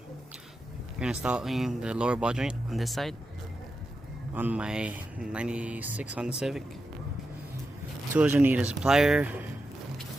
installing the lower ball joint on this side on my 96 Honda Civic. Tools you need is a plier,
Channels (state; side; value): normal; both; correlation 0.89